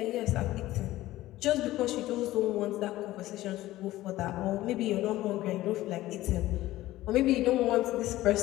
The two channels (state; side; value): quieter; right; 16.1 dB